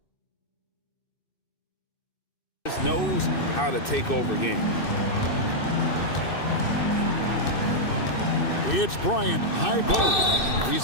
just knows how to take over games. It's Bryant, high post.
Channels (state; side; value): late; right; 2.6 ms